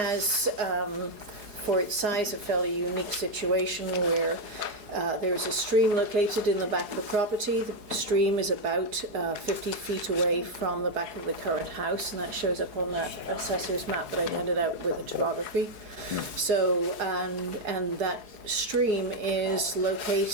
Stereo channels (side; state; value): left; late; 4.8 ms